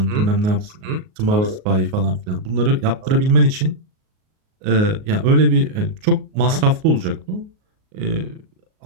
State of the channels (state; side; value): late; left; 38 ms